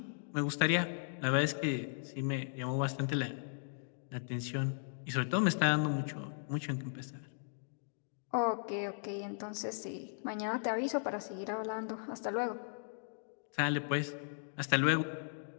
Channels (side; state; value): right; silent; digital silence